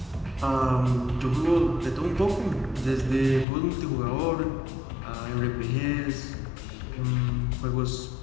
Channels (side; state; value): right; drops out; at 3.5 s